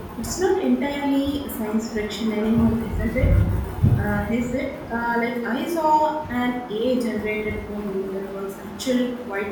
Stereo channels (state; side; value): identical; both; correlation 1.00